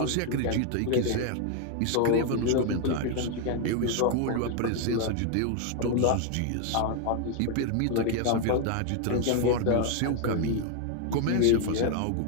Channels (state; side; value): different; both; correlation 0.00